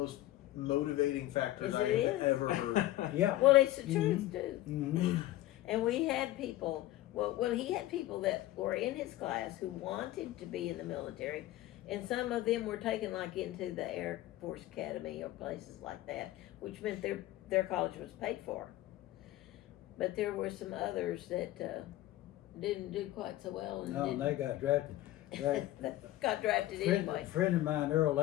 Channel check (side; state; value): right; quieter; 15.6 dB